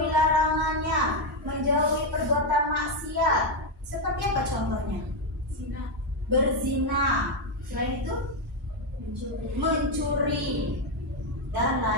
larangannya, menjauhi perbuatan maksiat. Seperti apa contohnya? Zina. Berzina. Selain itu mencuri dan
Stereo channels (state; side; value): normal; both; correlation 0.04